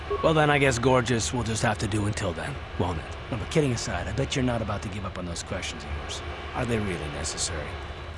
Well then, I guess gorgeous will just have to do until then, won't it? No, but kidding aside, I bet you're not about to give up on those questions of yours. Are they really necessary?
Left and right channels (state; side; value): identical; both; correlation 1.00